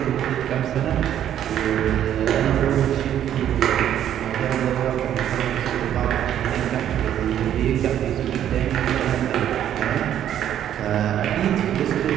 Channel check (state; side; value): quieter; left; 10.7 dB